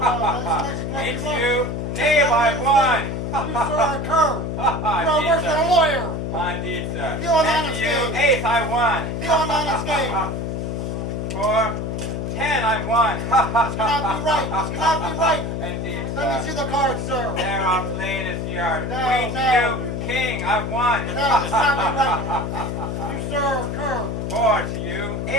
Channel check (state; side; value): noise; left; hum, 3 dB below the sound